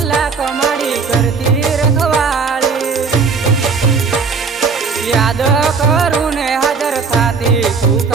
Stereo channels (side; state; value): left; quieter; 5.1 dB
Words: माड़ी करती रखवाड़ी याद करू ने हाजर थाती